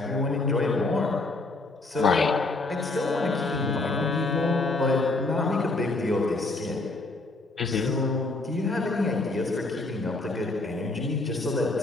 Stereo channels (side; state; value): right; quieter; 3.1 dB